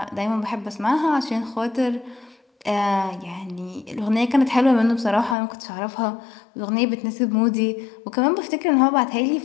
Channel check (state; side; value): drops out; right; at 5.4 s